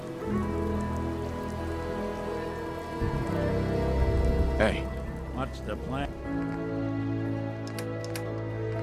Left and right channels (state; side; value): identical; both; correlation 1.00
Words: Hey. What's the plan?